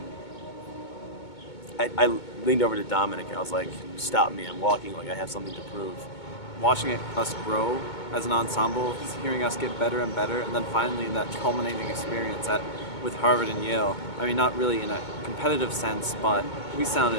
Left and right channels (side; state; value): right; late; 2.2 ms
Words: I leaned over to Dominic and I was like, stop me, I'm walking I have something to prove. Watching us grow as an ensemble, hearing us get better and better, and then finally in that culminating experience with Harvard and Yale, I mean, not really in a competitive sense, but we